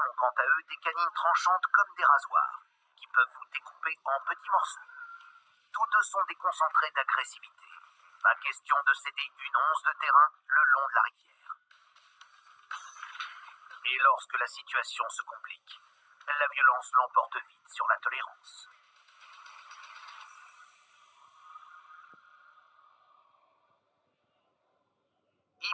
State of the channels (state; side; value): identical; both; correlation 1.00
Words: ont quant à eux des canines tranchantes comme des rasoirs qui peuvent vous découper en petits morceaux. Tous deux sont des concentrés d'agressivité. Pas question de céder une once de terrain le long de la rivière. Et lorsque la situation se complique, la violence l'emporte vite sur la tolérance.